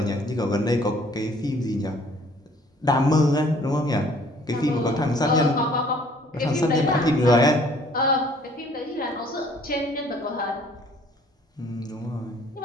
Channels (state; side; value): normal; both; correlation 0.57